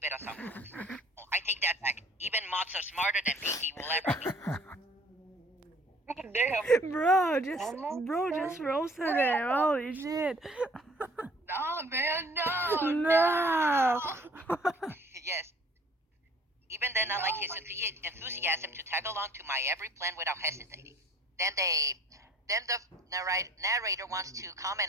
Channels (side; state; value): both; normal; correlation 0.54